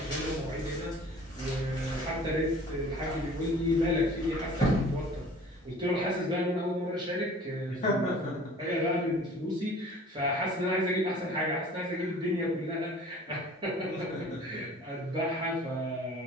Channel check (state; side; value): normal; both; correlation 0.48